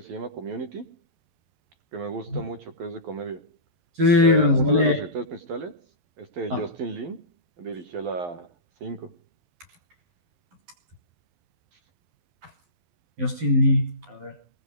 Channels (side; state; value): left; late; 11 ms